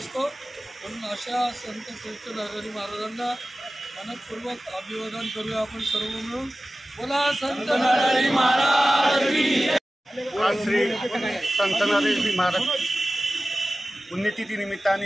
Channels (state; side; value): normal; both; correlation 0.96